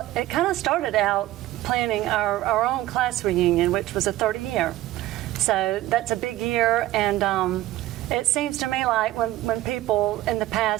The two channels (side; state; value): left; quieter; 15.7 dB